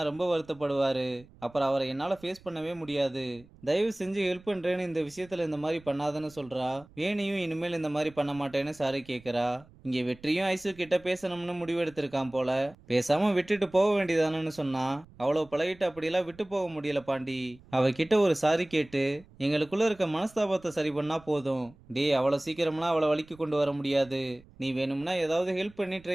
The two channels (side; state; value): right; noise; rumble, 25 dB below the sound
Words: ரொம்ப வருத்தப்படுவாரு, அப்புறம் அவரை என்னால ஃபேஸ் பண்ணவே முடியாது, தயவு செஞ்சு ஹெல்ப் பண்றேன்னு இந்த விஷயத்துல இந்த மாதிரி பண்ணாதன்னு சொல்றா. வேணியும் இனிமேல் இந்த மாதிரி பண்ண மாட்டேன்னு சாரி கேட்குறா. இங்க வெற்றியும் ஐசு கிட்ட பேசணும்னு முடிவெடுத்திருக்கான் போல, பேசாம விட்டுட்டு போக வேண்டியதானு சொன்னா, அவ்வளவு பழகிட்டு அப்படியெல்லாம் விட்டு போக முடியல பாண்டி, அவகிட்ட ஒரு சாரி கேட்டு எங்களுக்குள்ள இருக்க மனஸ்தாபத்தை சரி பண்ணா போதும். டேய் அவ்வளவு சீக்கிரம்லாம் அவளை வலிக்கு கொண்டு வர முடியாது, நீ வேணும்னா ஏதாவது ஹெல்ப் பண்ணி